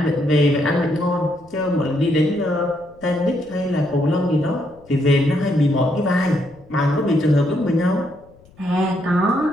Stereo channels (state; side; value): noise; left; rumble, 27 dB below the sound